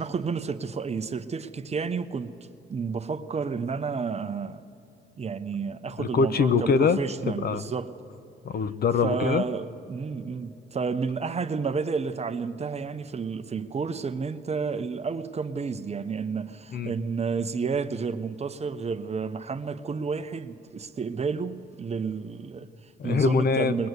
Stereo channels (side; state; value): both; normal; correlation 0.51